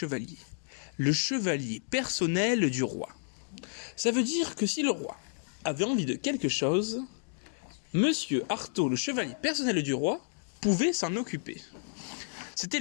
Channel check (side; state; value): right; silent; digital silence